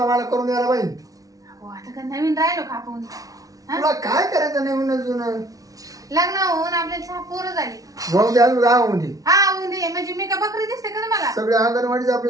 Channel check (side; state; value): left; late; 0.18 ms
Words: मला करून द्यायला पाहिजे. आता का नवीन राहिलो खापून. तुला काय करायचं नवीन लग्न होऊन आपल्याला पोरं झाली. हा म्हणजे मी का बकरी दिसते का तुम्हाला. सगळे अंगणवाडीच